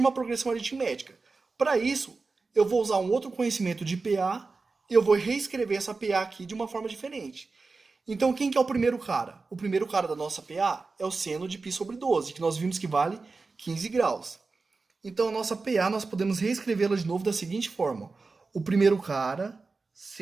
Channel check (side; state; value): left; quieter; 4.0 dB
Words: progressão aritmética. Para isso, eu vou usar um outro conhecimento de PA e eu vou reescrever essa PA aqui de uma forma diferente. Então, quem que é o primeiro cara? O primeiro cara da nossa PA é o seno de π sobre 12, que nós vimos que vale 15 graus. Então, a nossa PA, nós podemos reescrevê-la de novo da seguinte forma. O primeiro cara,